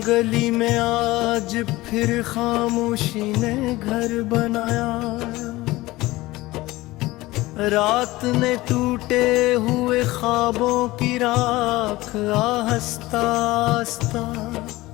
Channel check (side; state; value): right; quieter; 19.1 dB